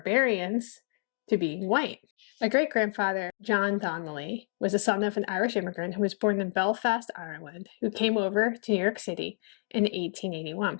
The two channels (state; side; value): silent; right; digital silence